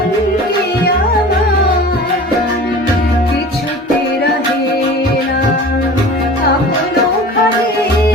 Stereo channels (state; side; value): normal; both; correlation 0.40